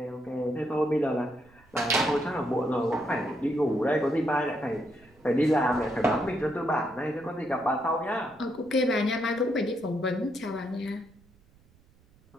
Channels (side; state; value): right; noise; rumble, 30 dB below the sound